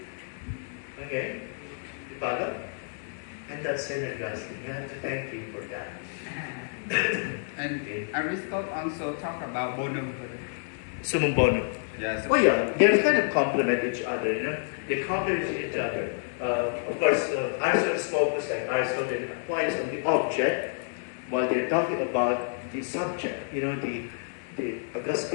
Okay? You follow? And that's Saint Augustine. You have to thank him for that. And Aristotle also talk about bonum. Summum bonum. Yes. Oh yeah, they kind of complement each other, you know. They complement each other. Of course, Aristotle's focus, like Aristotle, Aquinas, on the object, while they're talking about the subject. You know, the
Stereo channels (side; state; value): right; silent; 59 dB below the other